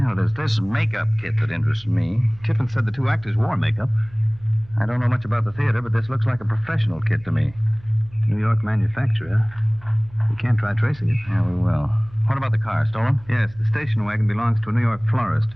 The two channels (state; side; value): noise; right; hum, 23 dB below the sound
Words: there's this makeup kit that interests me. Tiffin said the 2 actors wore makeup. I don't know much about the theater, but this looks like a professional kit to me. New York manufacturer. We can't try tracing it. Yeah, we will. What about the car? Stolen? Yes, the station wagon belongs to a New York florist.